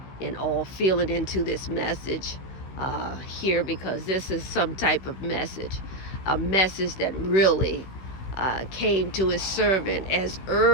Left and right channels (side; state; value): right; late; 15 ms